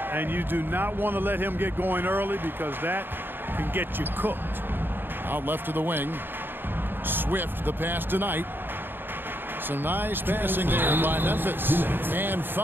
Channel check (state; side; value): late; left; 0.097 ms